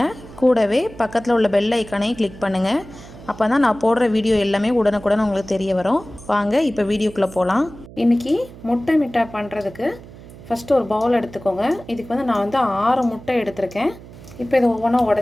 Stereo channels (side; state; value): right; noise; hum, 18 dB below the sound